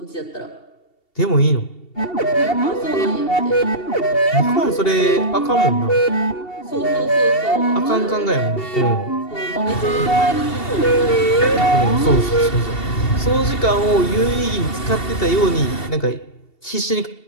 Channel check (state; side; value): late; right; 2.7 ms